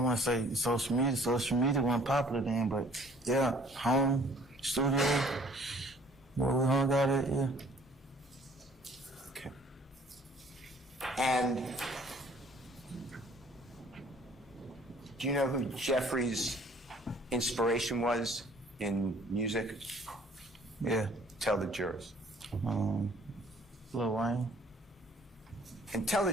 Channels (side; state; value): both; normal; correlation 0.56